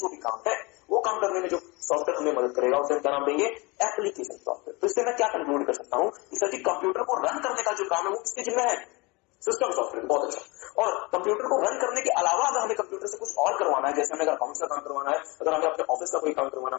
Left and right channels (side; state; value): right; quieter; 26.1 dB